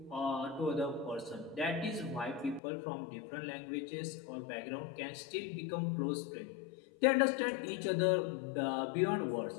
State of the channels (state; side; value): drops out; right; at 2.6 s